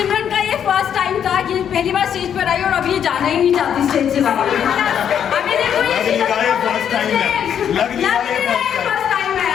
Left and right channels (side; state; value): right; quieter; 8.8 dB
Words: का ये फर्स्ट टाइम था कि पहली बार स्टेज पर आई और अभी ये जाना ही नहीं चाहती स्टेज से बाहर. अभी देखो ये फर्स्ट टाइम है. लग रहा है फर्स्ट टाइम है.